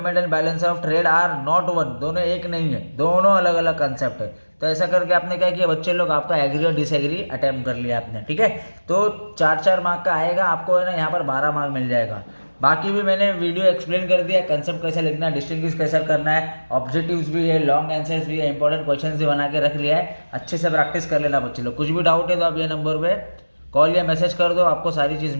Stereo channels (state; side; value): inverted; both; correlation -1.00